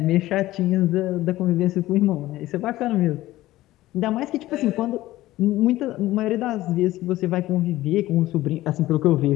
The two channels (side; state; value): right; quieter; 16.3 dB